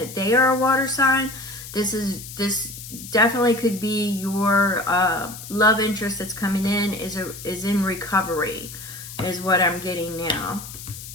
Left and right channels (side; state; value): left; noise; hiss, 13 dB below the sound